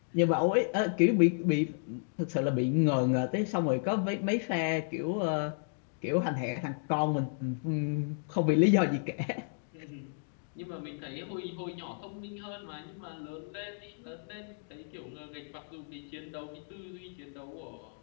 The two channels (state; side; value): silent; right; digital silence